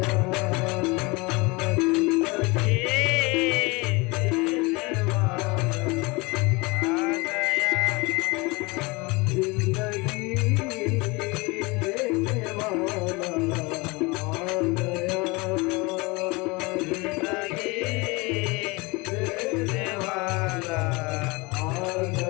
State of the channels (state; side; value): quieter; right; 25.5 dB